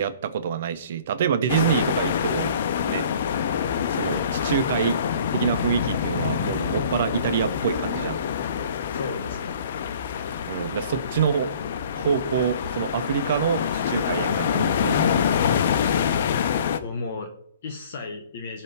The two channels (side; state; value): both; inverted; correlation -0.51